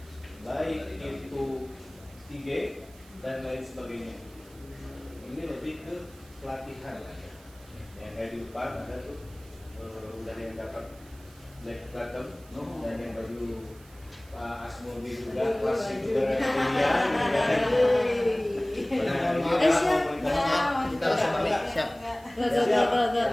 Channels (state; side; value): noise; right; hiss, 25 dB below the sound